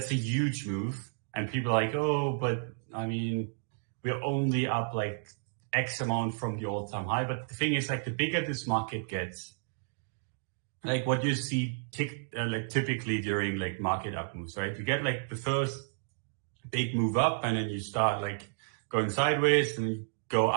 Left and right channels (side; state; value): left; silent; digital silence